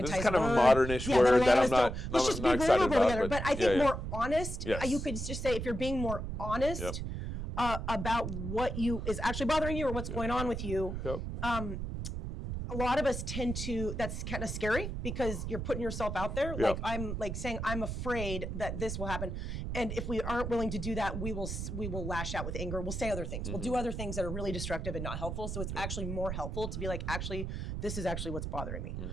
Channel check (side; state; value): right; noise; rumble, 4 dB below the sound